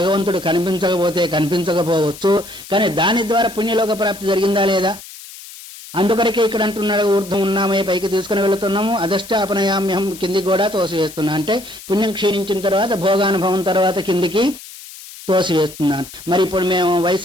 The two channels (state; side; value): noise; left; hiss, 16 dB below the sound